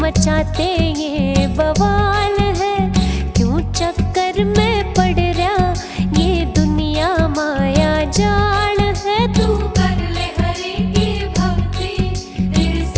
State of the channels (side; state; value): both; identical; correlation 1.00